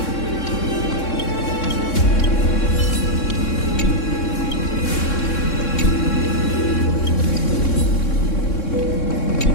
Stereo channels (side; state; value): right; late; 3.6 ms